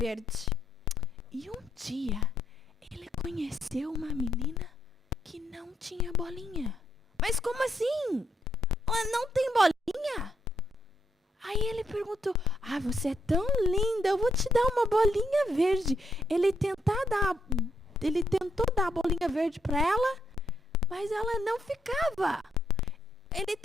E um dia, ele conheceu uma menina que não tinha bolinha. Mas como assim? Ela não tem bolinha? Aí ele perguntou: você é tão linda, eu vou te dar uma bolinha verde. Ele tentou dar a bolinha verde para ela, mas ela não ficava. Ele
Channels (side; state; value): both; normal; correlation 0.77